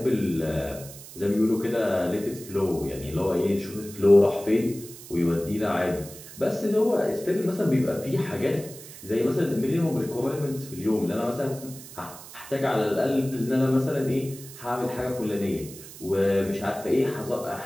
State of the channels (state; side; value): noise; right; hiss, 16 dB below the sound